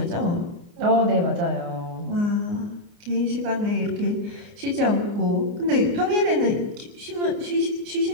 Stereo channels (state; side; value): late; left; 29 ms